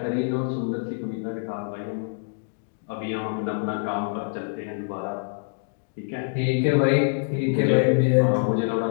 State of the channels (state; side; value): silent; right; digital silence